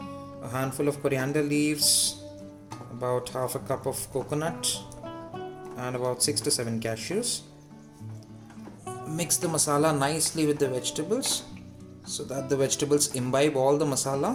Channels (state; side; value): identical; both; correlation 1.00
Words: handful of coriander leaves, about half a cup of coconut, and about 6 to 7 cashews. Mix the masala nicely with the vegetables so that the vegetables imbibe all the masala.